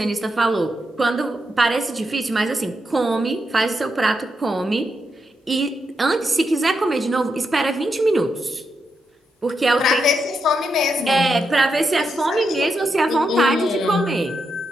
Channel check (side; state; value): both; normal; correlation 0.84